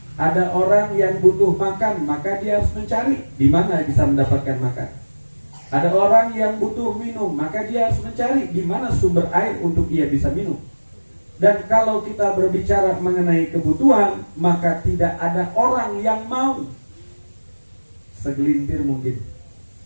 Ada orang yang butuh makan, maka dia harus mencari di mana bisa mendapatkan makan. Ada orang yang butuh minum, maka dia harus mencari di mana sumber air untuk ia bisa minum. Dan kalau kita berbicara mengenai kebutuhan, maka tidak ada orang yang mau. Segelintir mungkin.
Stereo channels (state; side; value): inverted; both; correlation -1.00